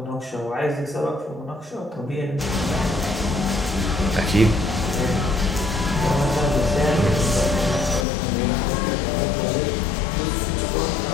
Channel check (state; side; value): drops out; right; at 8.1 s